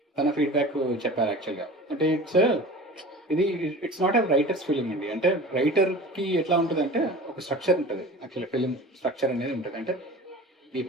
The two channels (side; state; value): both; normal; correlation 0.38